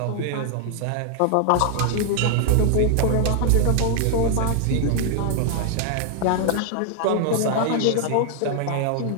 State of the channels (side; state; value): both; different; correlation 0.00